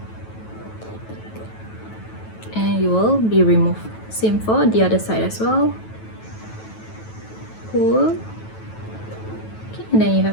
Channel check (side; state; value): right; late; 9.2 ms